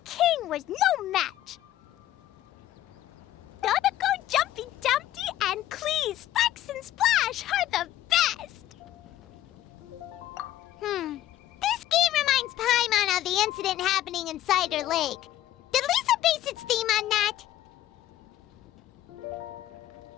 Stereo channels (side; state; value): right; quieter; 13.5 dB